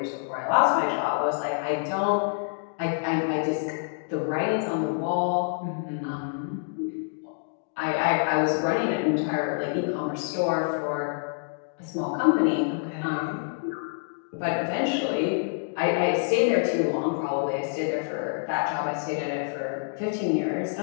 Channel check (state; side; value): silent; right; digital silence